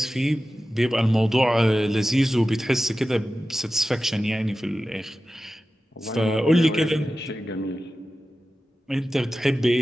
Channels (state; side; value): normal; both; correlation 0.94